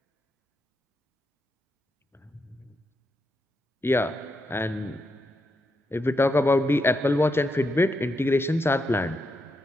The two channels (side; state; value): both; normal; correlation 0.83